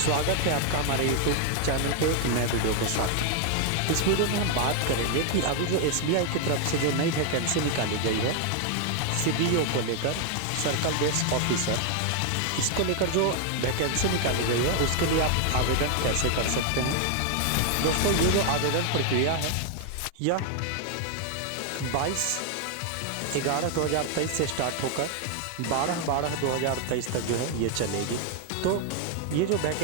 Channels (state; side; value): different; both; correlation 0.00